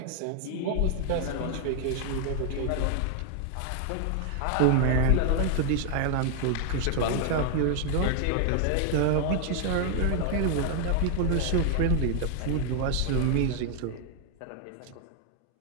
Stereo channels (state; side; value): different; both; correlation 0.00